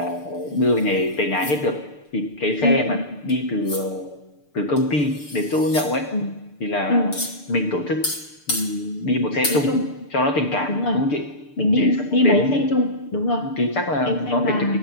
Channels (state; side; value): late; right; 6.8 ms